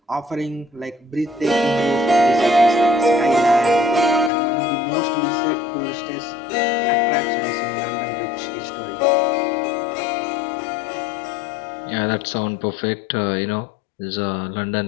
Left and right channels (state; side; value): drops out; right; at 4.3 s